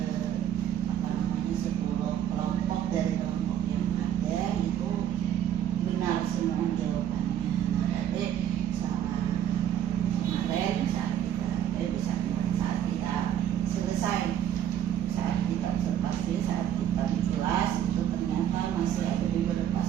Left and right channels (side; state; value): left; quieter; 10.3 dB